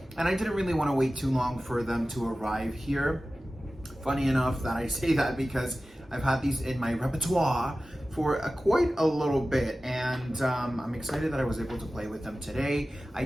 and I didn't really want to wait too long for them to arrive here. Funny enough that I say that because I've had these in my repertoire for quite a little bit, and I'm excited that I was able to play with them today. I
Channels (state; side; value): normal; both; correlation 0.96